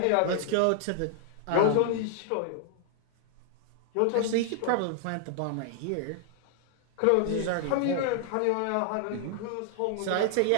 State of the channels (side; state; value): both; different; correlation 0.00